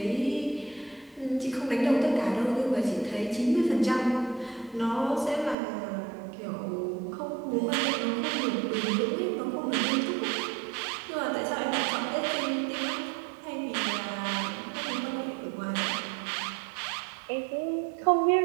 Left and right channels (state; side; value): drops out; left; at 5.6 s